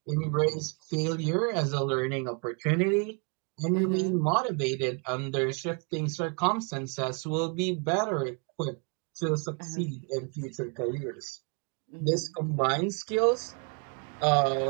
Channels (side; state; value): left; quieter; 36.6 dB